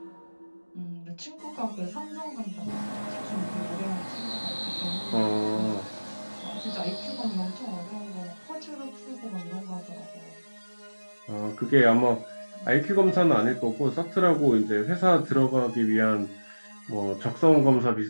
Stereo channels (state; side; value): inverted; both; correlation -1.00